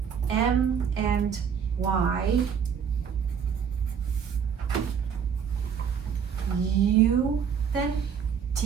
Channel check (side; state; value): left; quieter; 7.3 dB